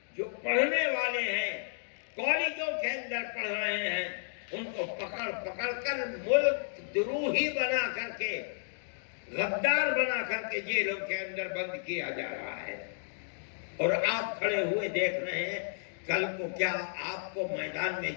جو پڑھنے والے ہیں، کالجوں کے اندر پڑھ رہے ہیں، ان کو پکڑ پکڑ کر ملک دروہی بنا کر کے، غدار بنا کر کے جیلوں کے اندر بند کیا جا رہا ہے۔ اور آپ کھڑے ہوئے دیکھ رہے ہیں، کل کو کیا آپ کو میدان میں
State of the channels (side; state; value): right; silent; digital silence